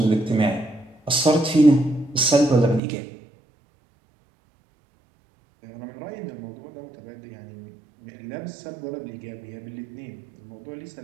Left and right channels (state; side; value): drops out; left; at 2.8 s